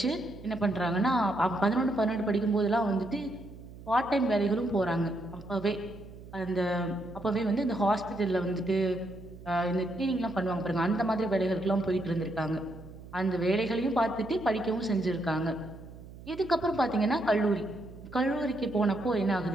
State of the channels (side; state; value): right; noise; hum, 16 dB below the sound